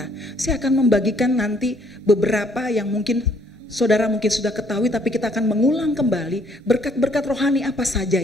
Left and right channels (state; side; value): normal; both; correlation 0.65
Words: Saya akan membagikan nanti beberapa yang mungkin saudara mungkin sudah ketahui, tapi kita akan mengulang kembali berkat-berkat rohani apa saja